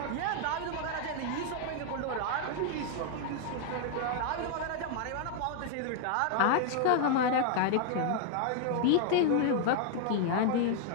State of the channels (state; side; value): different; both; correlation 0.00